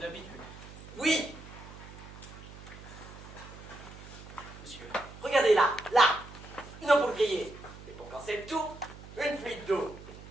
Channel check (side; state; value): right; noise; hum, 16 dB below the sound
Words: Oui. Monsieur. Regardez là, là. Une ampoule grillée. Et pour quand c'est le tout, une fuite d'eau.